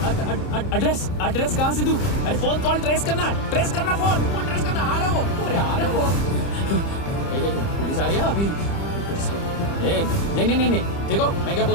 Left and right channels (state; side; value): late; right; 30 ms